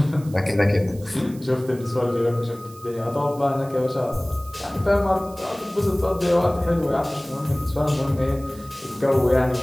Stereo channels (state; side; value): noise; right; hiss, 22 dB below the sound